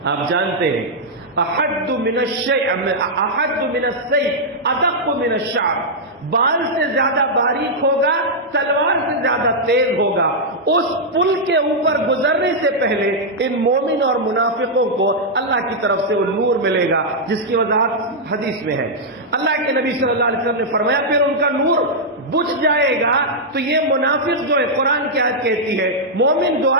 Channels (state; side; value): normal; both; correlation -0.06